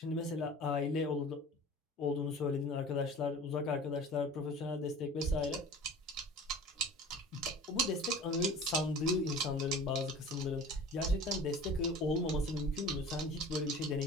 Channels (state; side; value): normal; both; correlation 0.41